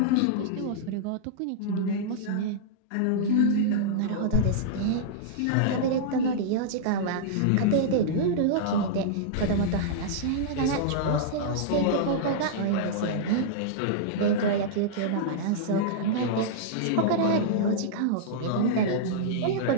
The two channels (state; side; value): different; both; correlation -0.02